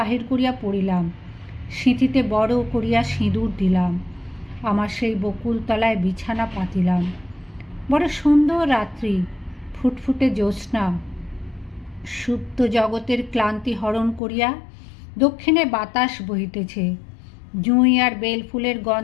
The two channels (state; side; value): drops out; right; at 14.2 s